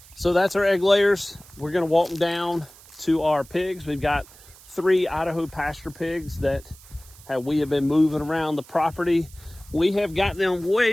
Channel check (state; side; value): noise; right; hiss, 23 dB below the sound